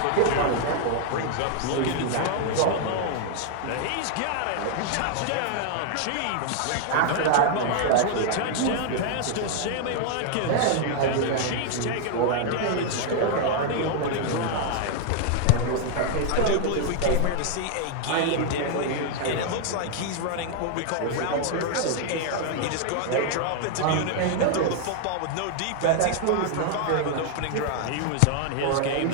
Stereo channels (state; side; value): different; both; correlation 0.00